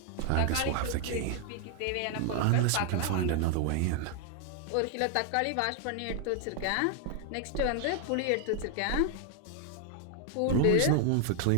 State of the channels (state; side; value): different; both; correlation 0.00